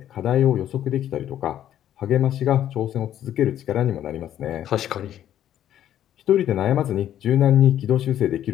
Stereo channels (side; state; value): right; quieter; 11.3 dB